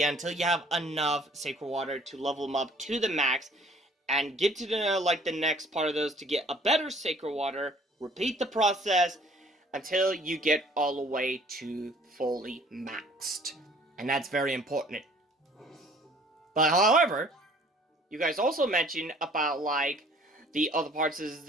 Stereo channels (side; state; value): both; normal; correlation 0.55